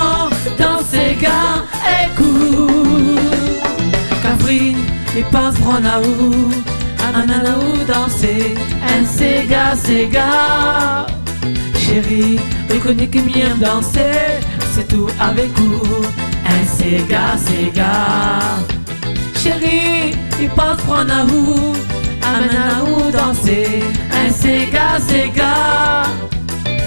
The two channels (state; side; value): inverted; both; correlation -1.00